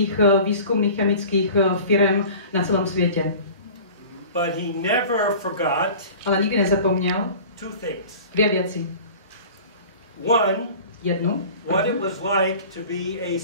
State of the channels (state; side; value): inverted; both; correlation -0.42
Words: výzkumných chemických firm na celém světě. But he never forgot Ale nikdy nezapomněl two things. dvě věci. Jednu. What it was like to be a